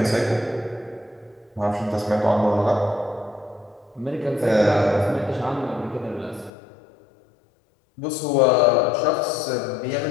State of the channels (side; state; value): right; drops out; at 6.5 s